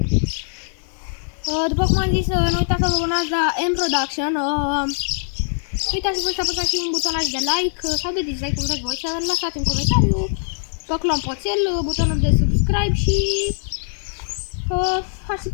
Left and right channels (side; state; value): right; silent; 65 dB below the other